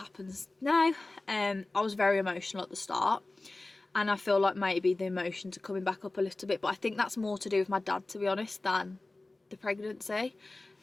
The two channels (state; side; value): quieter; right; 3.0 dB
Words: now. I was very emotional at the start, and I feel like maybe the emotions are coming back up a little bit, but I think that's more to do with my dad, to be honest, than the pregnancy.